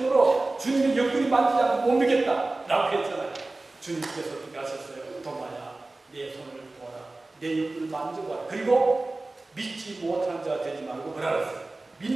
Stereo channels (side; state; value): left; quieter; 3.1 dB